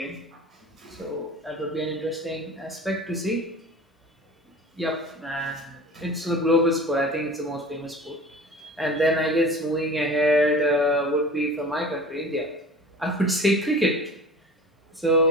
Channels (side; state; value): both; normal; correlation 0.39